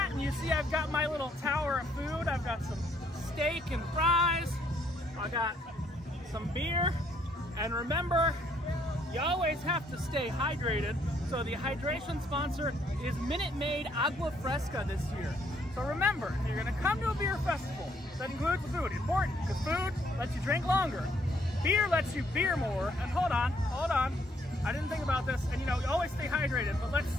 and you see I've got my little tower of food. I've got some steak and fries. I got some beer. And remember, you always have to stay hydrated. So the hydration sponsor is Minute Maid Agua Fresca this year. So remember, if you're gonna come to a beer festival, that includes food, important, because food lets you drink longer. Beer lets you beer more, and hold on, I didn't think about this, and you know, you always stay hydrated, but let's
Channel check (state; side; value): normal; both; correlation 0.68